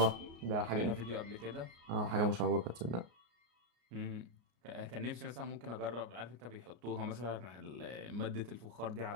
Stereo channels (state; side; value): late; left; 33 ms